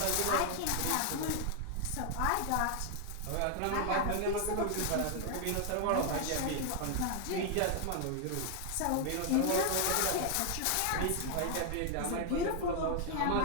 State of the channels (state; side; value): different; both; correlation 0.00